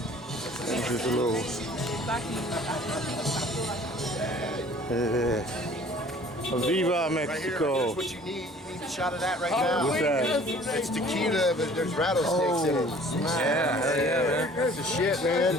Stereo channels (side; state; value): both; normal; correlation 0.51